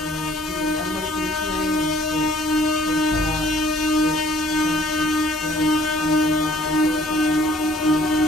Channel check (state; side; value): normal; both; correlation 0.58